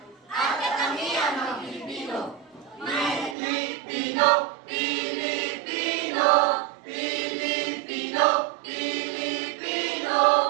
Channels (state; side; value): drops out; left; at 3.4 s